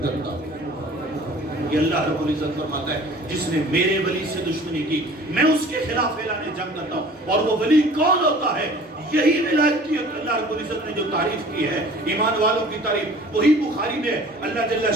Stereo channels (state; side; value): normal; both; correlation 0.48